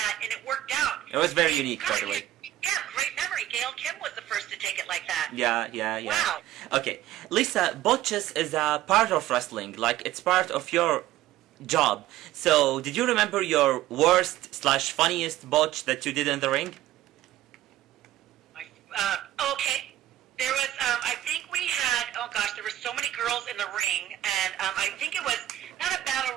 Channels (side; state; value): left; quieter; 13.9 dB